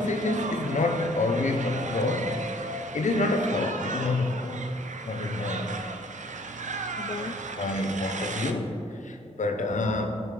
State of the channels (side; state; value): both; normal; correlation 0.55